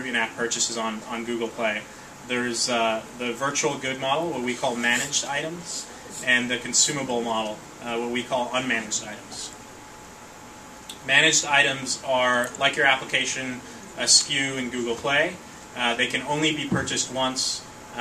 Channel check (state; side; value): identical; both; correlation 1.00